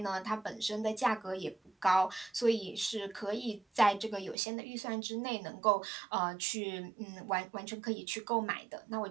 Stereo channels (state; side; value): drops out; left; at 4.4 s